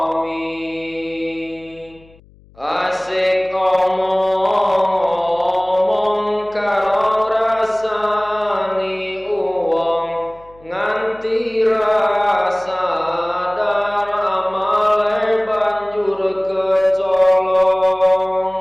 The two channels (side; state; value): left; noise; hum, 27 dB below the sound